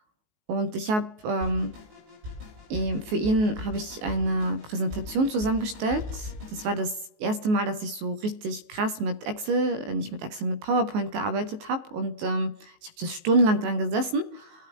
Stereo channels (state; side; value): late; left; 19 ms